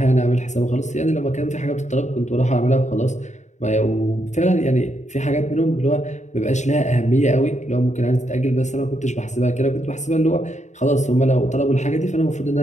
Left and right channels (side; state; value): right; late; 0.34 ms